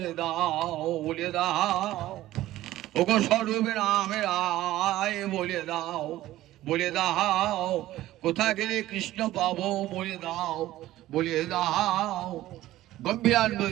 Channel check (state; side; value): quieter; left; 15.1 dB